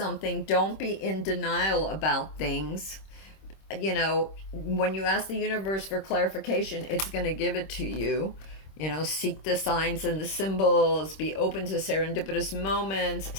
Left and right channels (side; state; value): right; late; 26 ms